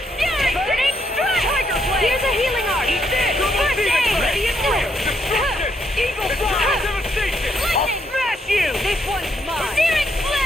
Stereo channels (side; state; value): both; normal; correlation 0.75